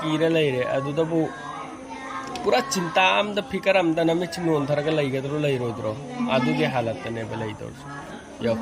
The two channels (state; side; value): identical; both; correlation 1.00